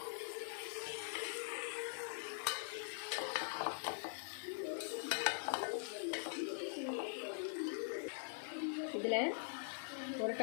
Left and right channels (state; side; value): silent; right; digital silence